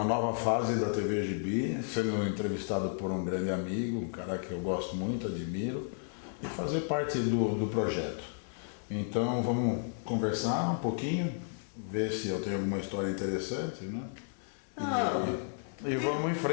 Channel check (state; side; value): silent; right; 56 dB below the other